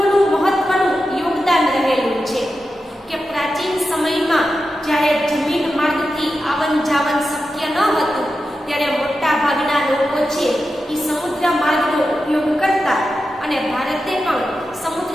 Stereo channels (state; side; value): normal; both; correlation 0.90